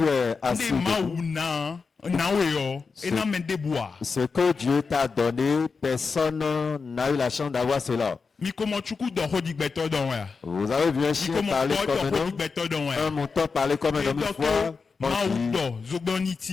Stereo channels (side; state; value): right; quieter; 4.9 dB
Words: es assis, Nde maou na weyo. Et na mende bois. ce que Dieu t'a donné, personne n'a eu la chance d'avoir cela. Miko mochuku do hodi beto don ya. Vous avez vu un chien Miko parler mo comme un do hodi homme, beto don ya. un mouton parler comme un Et homme une donc fois. On maou dit, do zogboni